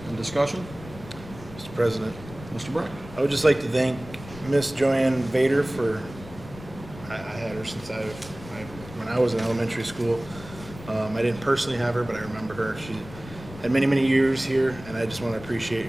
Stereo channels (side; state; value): left; noise; rumble, 16 dB below the sound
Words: And discussion? Mr. President, Mr. Breck? I would just like to thank Miss Joanne Vader for, I had her since when I was in elementary school. I didn't personally have her, but I remember her. She had many, many years here, and I just want to appreciate